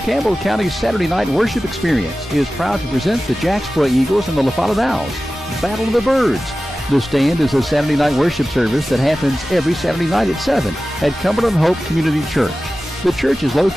Campbell County's Saturday night worship experience is proud to present the Jacksboro Eagles and the La Follette Owls. Battle of the Birds. The Stand is a Saturday night worship service that happens every Saturday night at 7 at Cumberland Hope Community Church. The church is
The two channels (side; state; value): both; normal; correlation 0.95